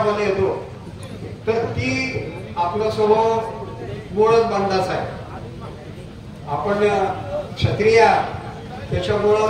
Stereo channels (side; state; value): both; identical; correlation 1.00